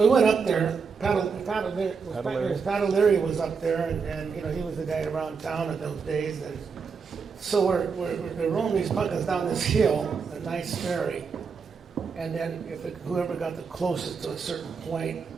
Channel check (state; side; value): quieter; left; 5.5 dB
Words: we went up there. Pat O'Leary was up there, and he was the guy around town in those days. And so we're rolling these pumpkins down this hill at Knight's Ferry, and then whoever got the closest to a certain point,